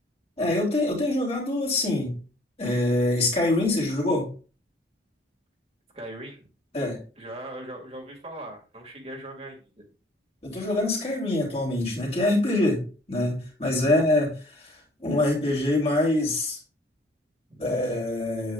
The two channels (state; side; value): normal; both; correlation 0.56